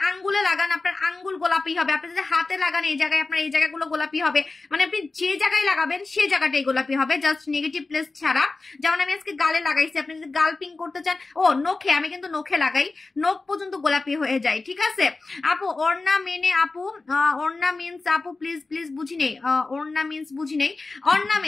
আঙ্গুলে লাগান আপনার আঙ্গুল গোলাপি হবে, আপনি যদি হাতে লাগান এই জায়গায় আপনার এই জায়গাগুলো গোলাপি হবে। মানে আপনি যে জায়গায় লাগাবেন সেই জায়গাটাই গোলাপি হবে, জাস্ট নেগেটিভ প্লেস ছাড়া। যেমন আমি আজকে গালে লাগাইছি, আপনি যদি গাল পিঙ্ক করতে চান, ও নখে, আমি কিন্তু নখে লাগাই, নখ পর্যন্ত গোলাপি হয়ে যায়, ঠিক আছে। আপু ওড়না মেনে, আপু ওড়না মিন্স, আপু প্লিজ প্লিজ বুঝি নেই, অর্নামেন্টস বুঝি নেই।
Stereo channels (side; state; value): right; quieter; 3.6 dB